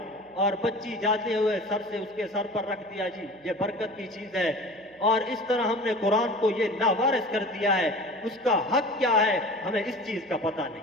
اور بچی جاتے ہوئے سر سے اس کے سر پر رکھ دیا, جی یہ برکت کی چیز ہے. اور اس طرح ہم نے قرآن کو یہ لاوارث کر دیا ہے. اس کا حق کیا ہے ہمیں اس چیز کا پتہ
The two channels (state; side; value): noise; right; hum, 29 dB below the sound